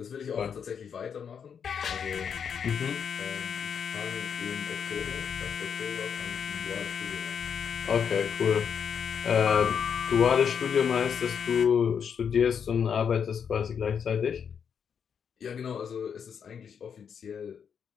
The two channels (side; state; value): right; quieter; 7.3 dB